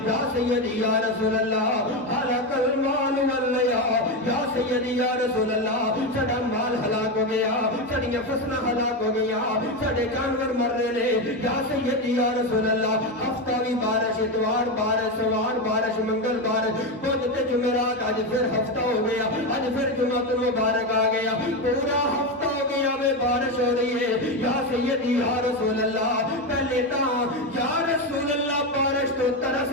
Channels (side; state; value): both; normal; correlation 0.13